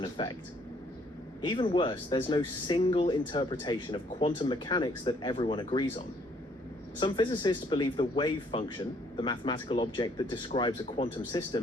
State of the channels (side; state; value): both; normal; correlation 0.65